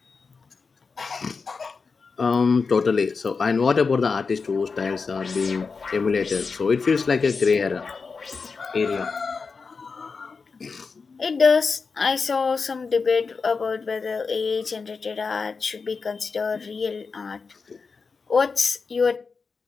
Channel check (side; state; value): right; quieter; 4.8 dB